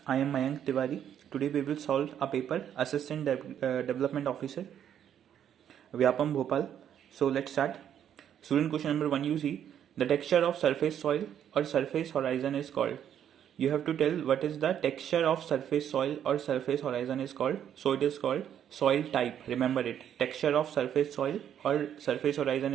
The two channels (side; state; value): left; quieter; 9.6 dB